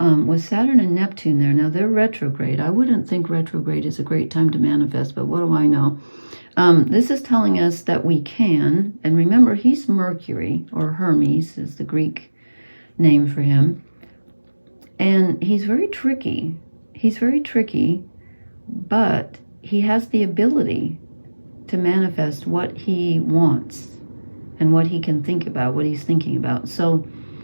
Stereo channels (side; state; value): both; inverted; correlation -1.00